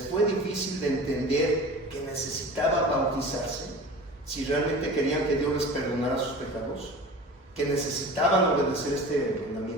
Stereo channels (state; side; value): normal; both; correlation 0.37